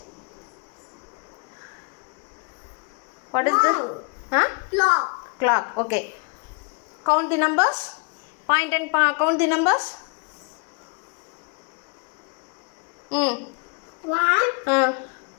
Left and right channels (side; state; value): right; quieter; 35.8 dB